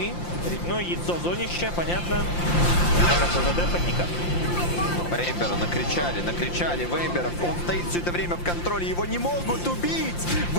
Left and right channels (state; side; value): late; right; 5.8 ms